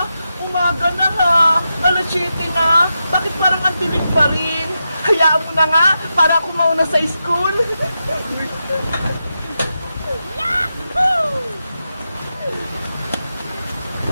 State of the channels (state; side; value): inverted; both; correlation -0.88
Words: umaga na ha. Alas 7 na. Bakit parang ang dilim pa rin? Hayaan mo na nga, para ako mauna sa school. Yahoo!